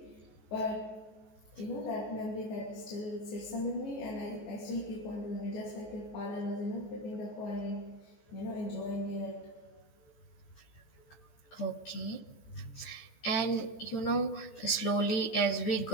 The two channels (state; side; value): late; right; 14 ms